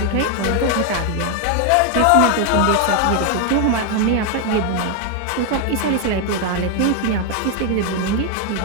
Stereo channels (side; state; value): both; different; correlation 0.01